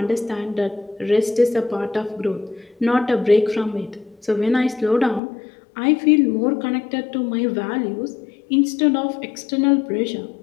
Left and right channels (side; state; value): right; drops out; at 5.2 s